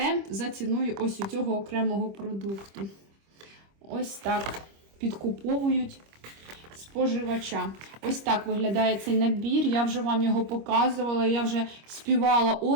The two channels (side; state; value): left; late; 25 ms